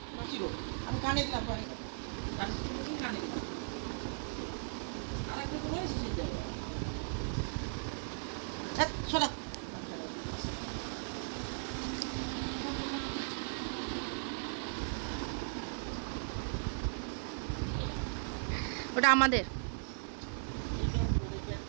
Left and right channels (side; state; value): left; silent; 53 dB below the other